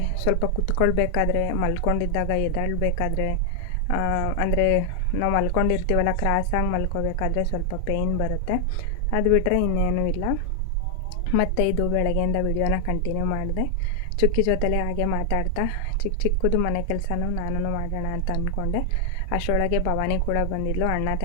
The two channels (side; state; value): left; late; 2.9 ms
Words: ಸ್ವಲ್ಪ ಕುತ್ಕೊಳ್ಬೇಕಾದ್ರೆ, ಮಲ್ಕೊಂಡಿದ್ದಾಗ ಎದ್ದೇಳಬೇಕಾದ್ರೆ, ಅಂದರೆ ನಾವು ಮಲ್ಕೊಂಡಿರ್ತೀವಲ್ಲ, ಕ್ರಾಸಾಗಿ ಮಲ್ಕೋಬೇಕಾದ್ರೆ ಸ್ವಲ್ಪ ಪೇಯ್ನ್ ಬರುತ್ತೆ. ಅದು ಬಿಟ್ಟರೆ ಇನ್ನೇನೂ ಇಲ್ಲ. ಮತ್ತು ಇದು ಬೆಳಗ್ಗೆಯಿಂದ ವಿಡಿಯೋನ ಕಂಟಿನ್ಯೂ ಮಾಡಿದೆ. ಚುಕ್ಕಿ ಜೊತೆಲೇ ಹಾಗೆ ಮಾತಾಡ್ತಾ ಚಿಕ್ಕದು ಮನೆ ಕೆಲಸನೂ ನಾನು ಮಾಡೋಣ ಅಂತ ಅಂದ್ಕೊಂಡೆ. ಅಷ್ಟರೊಳಗೆ ಭವಾನಿ ಕೂಡ ಬಂದಿದ್ಲು. ಅಣ್ಣ